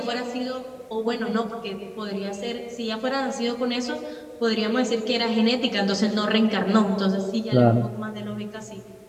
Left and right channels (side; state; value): both; identical; correlation 1.00